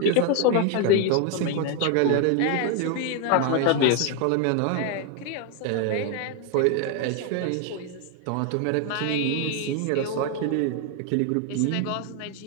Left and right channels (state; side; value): different; both; correlation 0.01